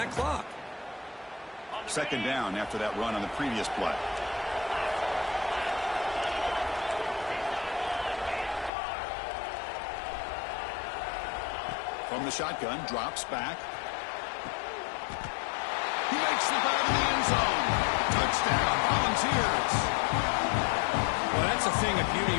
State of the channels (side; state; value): right; drops out; at 8.7 s